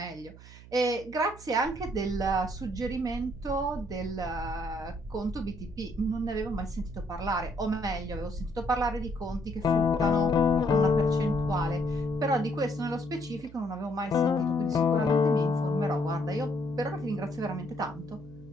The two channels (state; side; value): noise; right; hum, 19 dB below the sound